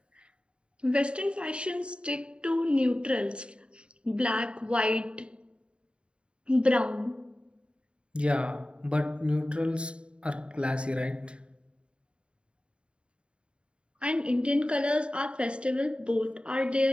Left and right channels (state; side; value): late; left; 0.055 ms